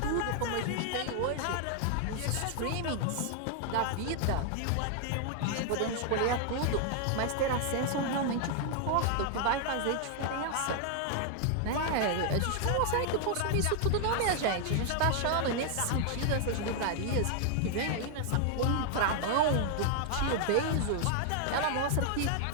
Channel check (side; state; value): both; different; correlation 0.00